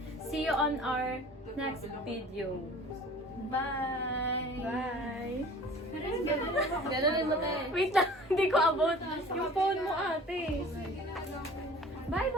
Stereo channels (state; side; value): normal; both; correlation 0.46